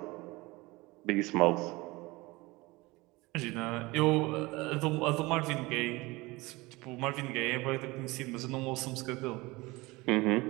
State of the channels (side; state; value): left; quieter; 22.3 dB